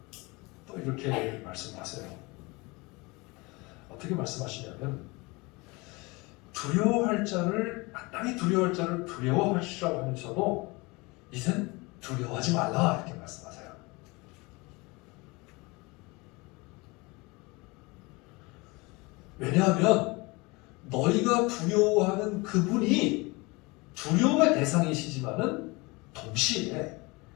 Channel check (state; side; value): quieter; right; 25.3 dB